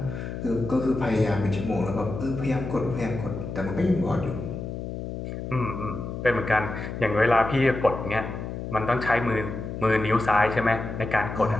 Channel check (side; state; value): left; noise; hum, 7 dB below the sound